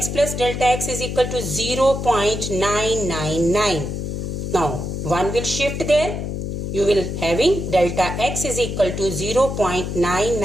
plus delta x is equal to 0.999. Now 1 will shift there. You will having delta x is equal to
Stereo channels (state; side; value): noise; left; hum, 4 dB below the sound